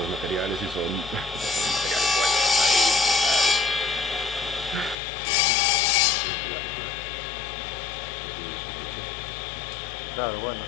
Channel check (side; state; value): right; drops out; at 5.0 s